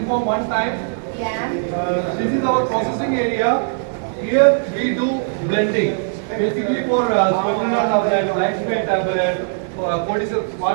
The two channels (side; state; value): left; silent; 66 dB below the other